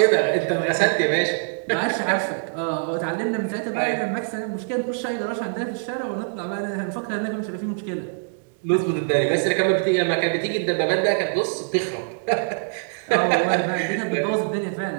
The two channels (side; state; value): left; silent; digital silence